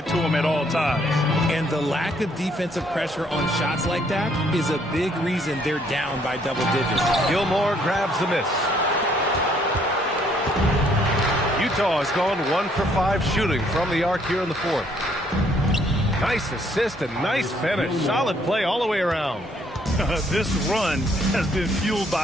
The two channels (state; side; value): normal; both; correlation 0.66